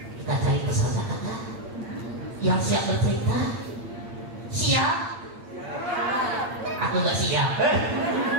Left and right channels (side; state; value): left; late; 8.8 ms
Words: kita cari peserta kakak yang siap bercerita. Siap? Aku nggak siap.